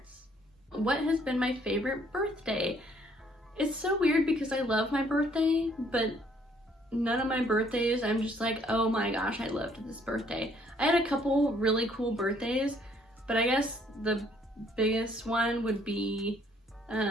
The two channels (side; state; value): both; normal; correlation 0.63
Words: What has been my favorite birthday? It's so weird because I love my birthday, but none of my birthdays I'm just like, oh my gosh, I loved this birthday. I had a couple really cool birthdays, but I guess the biggest one would be